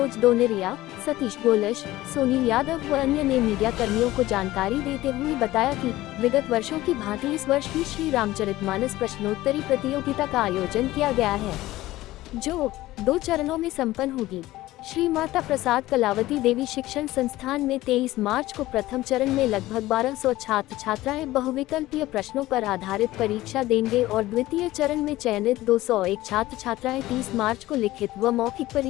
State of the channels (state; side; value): quieter; right; 16.7 dB